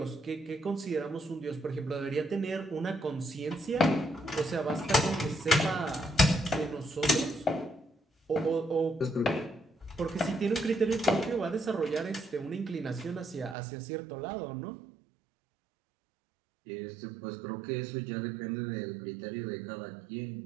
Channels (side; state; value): left; drops out; at 13.6 s